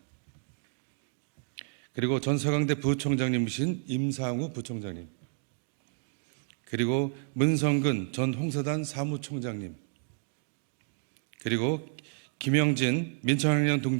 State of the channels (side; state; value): left; silent; 57 dB below the other